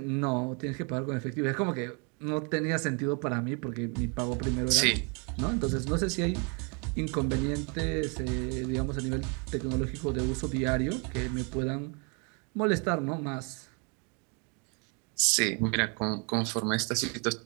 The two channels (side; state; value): left; quieter; 34.9 dB